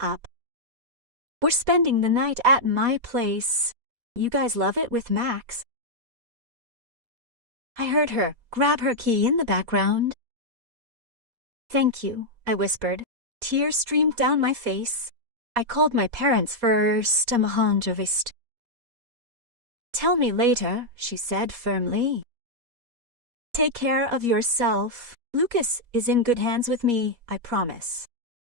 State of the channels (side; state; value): left; late; 4.2 ms